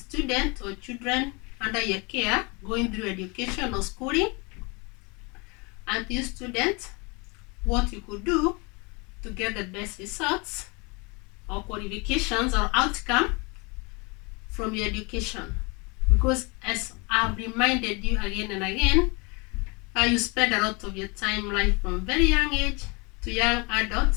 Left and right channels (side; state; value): right; quieter; 29.4 dB